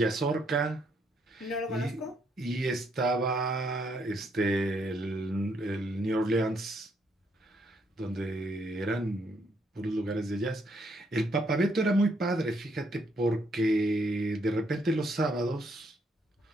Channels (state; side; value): normal; both; correlation 0.73